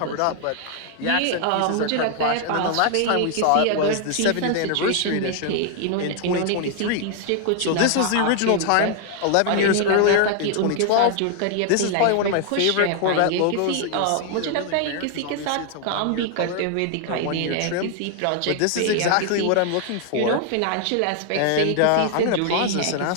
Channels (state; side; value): different; both; correlation 0.00